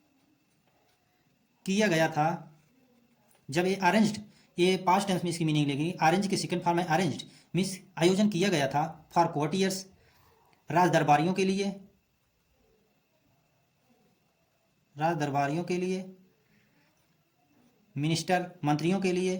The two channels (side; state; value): both; identical; correlation 1.00